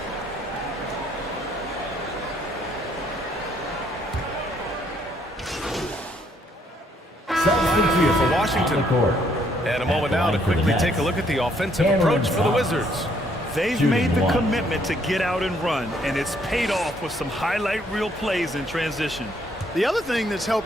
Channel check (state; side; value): normal; both; correlation 0.68